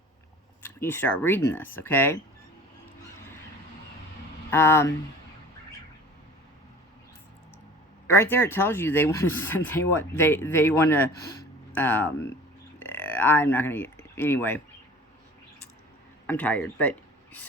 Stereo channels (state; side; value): normal; both; correlation 0.43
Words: you start reading this, okay? Right there it tells you they want to I'm not going to, anyway, I'm tired, but,